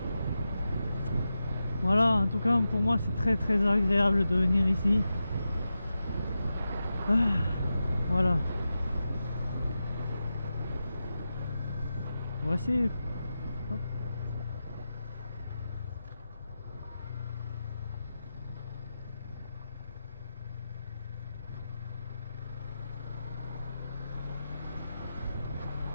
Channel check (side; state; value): both; inverted; correlation -0.91